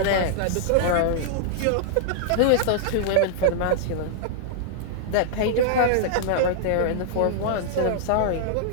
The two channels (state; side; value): different; both; correlation -0.01